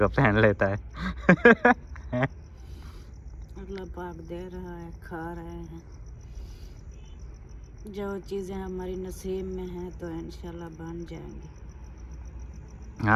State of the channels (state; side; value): identical; both; correlation 1.00